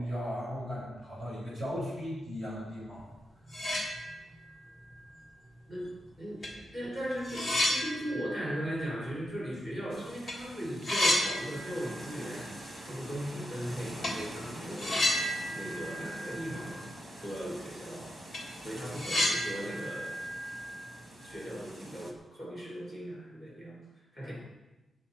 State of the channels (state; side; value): normal; both; correlation 0.87